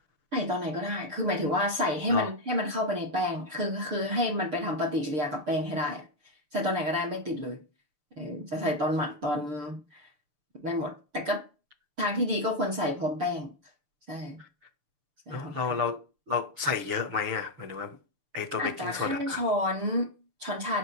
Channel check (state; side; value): late; left; 6.8 ms